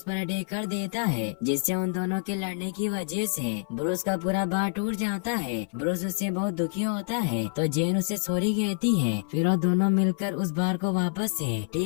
पर अटैक कर देता है, जिससे उन दोनों के लड़ने की वजह से ब्रूस का पूरा बार टूट जाता है। ब्रूस उससे बहुत दुखी होता है, तो जेन उसे सॉरी कहती है। फिर वो दोनों मिलकर उस बार को वापस से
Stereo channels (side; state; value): right; silent; 57 dB below the other